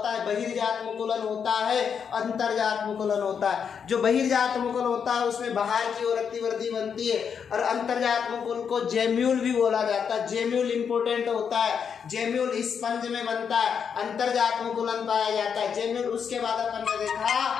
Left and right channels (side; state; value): right; quieter; 7.0 dB